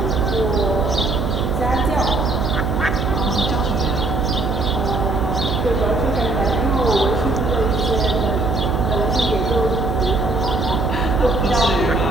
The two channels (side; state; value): right; noise; hum, 3 dB below the sound